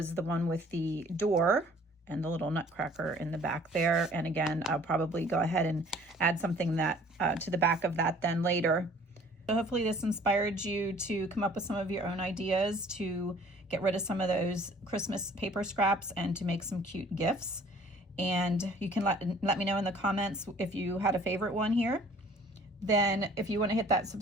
the one with the door and the little nutcracker in the back there. And again, I'll probably go ahead and add something that to the back of that then later. So hopefully this inspired you to come up with some of your own ideas to get rid of some of those Christmas paper scraps and to make some cute gifts. And you can let me know in the comments if you had a favorite one here. Then if you want to hit that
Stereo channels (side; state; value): both; normal; correlation 0.53